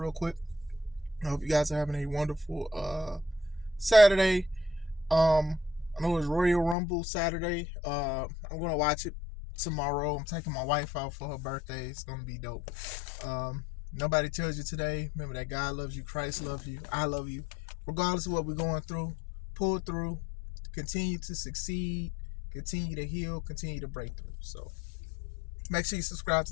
quick. I hope you guys are having a wonderful Saturday. I know it's Royal Rumble Saturday. I'm gonna watch it tomorrow. I'm taking my wife out for her birthday. It's gonna be dope. Nobody tells you today. Remember that God loves you, Christ loves you, I love you. Regardless of what we're going through, pull through, continue to succeed, continue to heal, continue to break through. So make sure you subscribe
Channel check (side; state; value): right; drops out; at 6.8 s